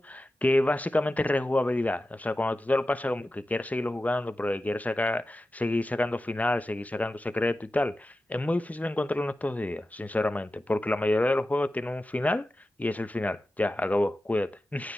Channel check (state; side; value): normal; both; correlation 0.93